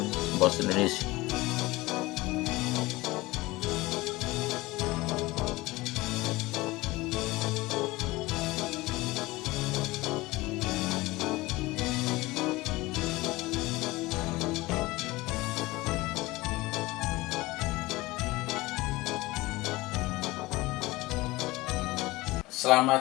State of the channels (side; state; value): right; quieter; 20.4 dB